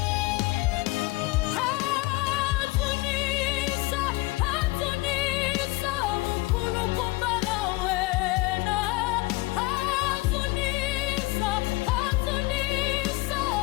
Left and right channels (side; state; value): right; quieter; 22.3 dB